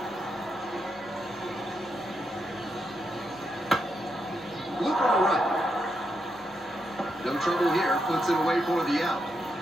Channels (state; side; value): normal; both; correlation 0.82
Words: Loop on the right. No trouble here, puts it away for the out.